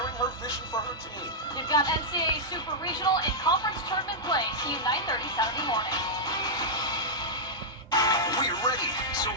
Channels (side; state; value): both; normal; correlation -0.07